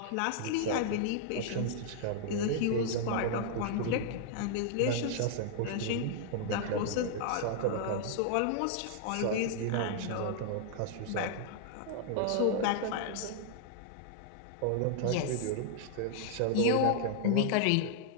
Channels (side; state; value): both; different; correlation -0.01